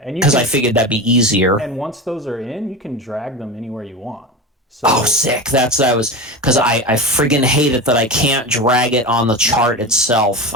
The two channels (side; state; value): both; normal; correlation 0.25